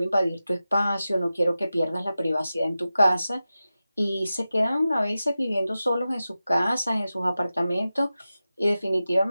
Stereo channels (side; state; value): both; inverted; correlation -0.94